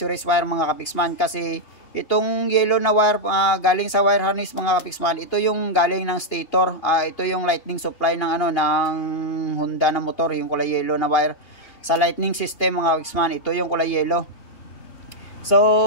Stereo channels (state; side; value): late; right; 2.8 ms